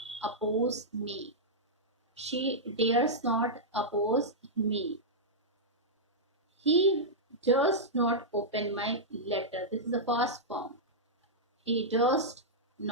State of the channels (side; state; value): both; normal; correlation -0.10